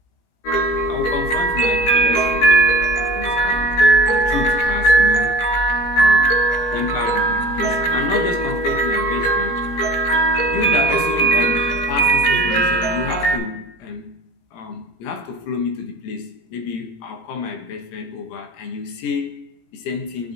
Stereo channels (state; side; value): late; right; 17 ms